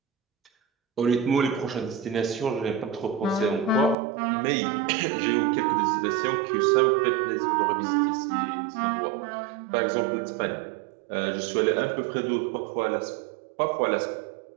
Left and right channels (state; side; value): drops out; left; at 4.0 s